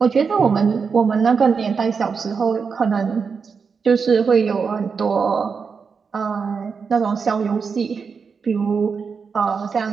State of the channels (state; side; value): quieter; left; 5.6 dB